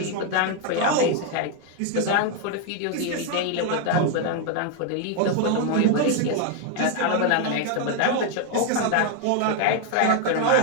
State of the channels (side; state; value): both; different; correlation 0.01